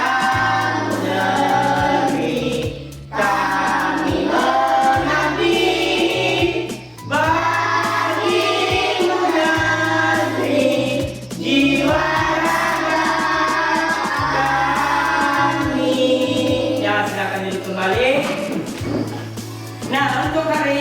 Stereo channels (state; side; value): identical; both; correlation 1.00